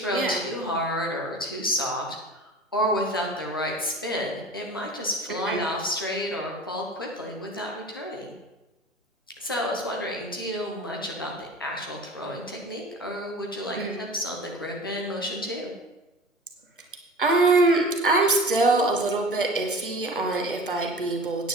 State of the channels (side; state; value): both; normal; correlation 0.39